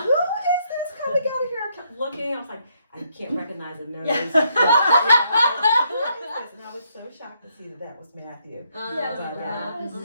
is this coming out of here? I kept looking. I was like, I can't recognize the nose. And I was so shocked to see that was Matthew. But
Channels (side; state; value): both; inverted; correlation -0.74